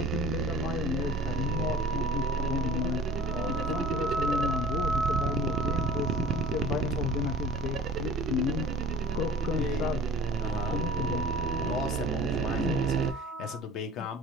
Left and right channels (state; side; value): normal; both; correlation 0.47